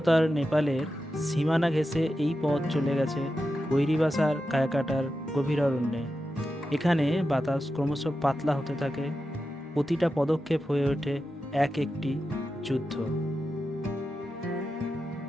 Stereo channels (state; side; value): normal; both; correlation 0.90